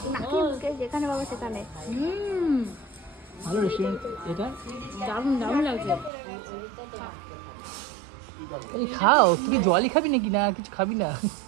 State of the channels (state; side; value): drops out; left; at 6.1 s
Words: নাকি মুখে যেখানে বাবা সেখানে ভালো রেস্টুরেন্ট এটা দারুণ দারুণ লাগছে। এই খাও তুই কি জলই খাবি নাকি না কিছু খাবি না